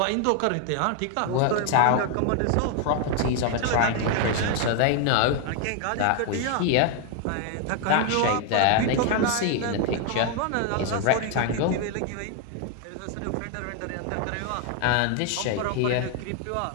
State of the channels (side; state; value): both; different; correlation 0.01